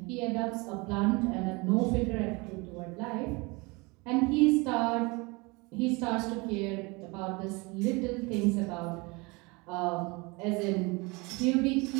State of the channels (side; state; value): left; quieter; 26.7 dB